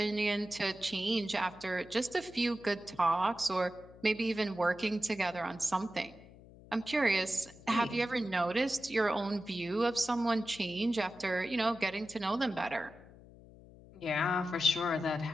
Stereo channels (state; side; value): noise; left; hum, 21 dB below the sound